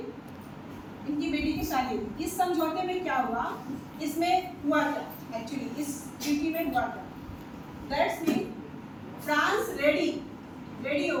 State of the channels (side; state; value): both; identical; correlation 1.00